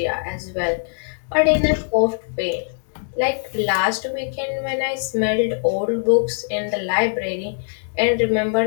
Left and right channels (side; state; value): right; silent; digital silence